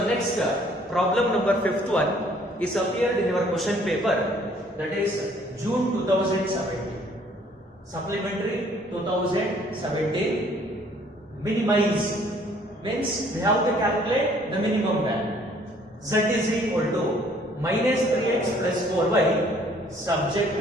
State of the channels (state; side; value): normal; both; correlation 0.60